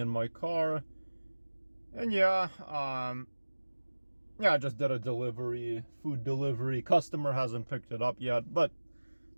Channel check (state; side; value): inverted; both; correlation -1.00